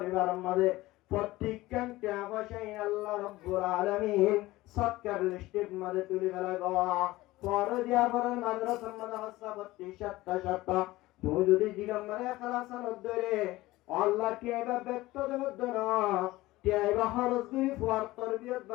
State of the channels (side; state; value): right; quieter; 18.3 dB